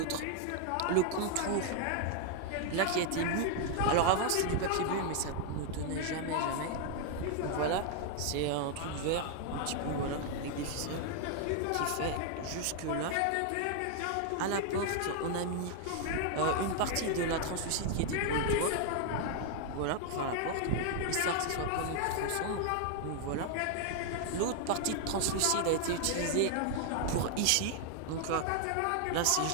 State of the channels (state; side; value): different; both; correlation 0.00